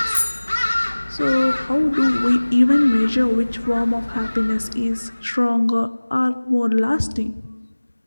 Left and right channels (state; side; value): inverted; both; correlation -1.00